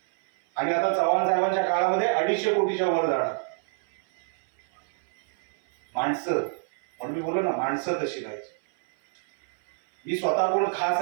आणि आता चव्हाण साहेबांच्या काळामध्ये 250 कोटीच्या वर जाणार. माणसं, म्हणून मी बोललो ना, माणसं तशी पाहिजे. मी स्वतः कोण खास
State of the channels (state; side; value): silent; left; 56 dB below the other